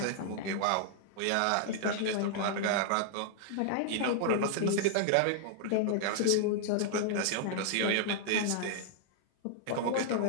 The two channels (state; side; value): different; both; correlation -0.01